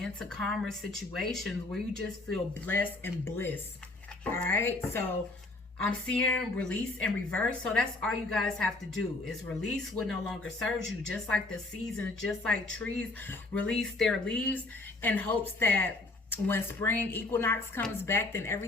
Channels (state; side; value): quieter; right; 3.1 dB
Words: calmer situations where you just feel blessed and bliss. All right, so I'm seeing release and reverse. So that's all you guys have to do is release what no longer serves you. Just like the seasons, just like trees release their leaves in hopes that when spring equinox comes back, then